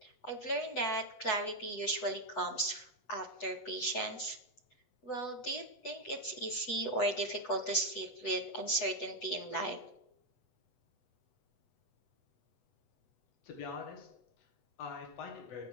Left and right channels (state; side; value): late; right; 8.0 ms